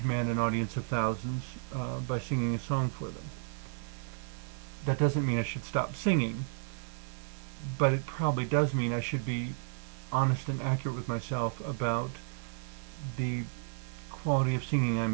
an audience of thousands by singing a song for them. That doesn't mean I should stop singing, but it probably does mean I should be honest and accurate with myself about the quality of singing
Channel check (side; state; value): left; silent; digital silence